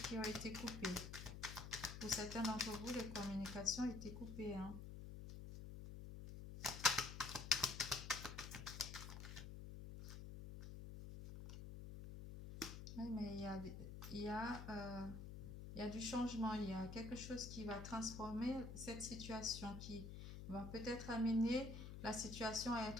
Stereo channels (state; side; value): noise; left; hum, 8 dB below the sound